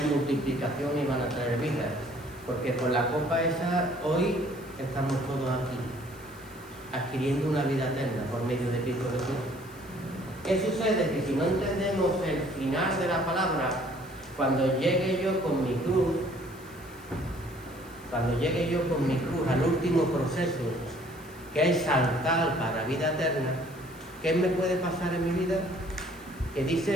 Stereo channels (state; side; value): noise; left; hiss, 23 dB below the sound